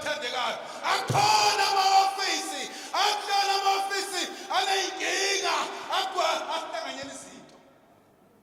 Akhona ama-ofisi ahlala ama-ofisi aneyinkinga ahlanganyela izinto.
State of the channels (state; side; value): identical; both; correlation 1.00